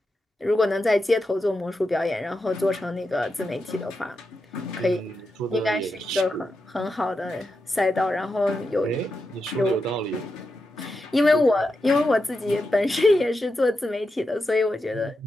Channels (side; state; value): both; normal; correlation 0.88